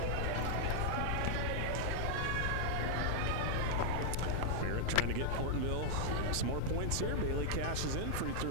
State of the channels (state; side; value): different; both; correlation -0.01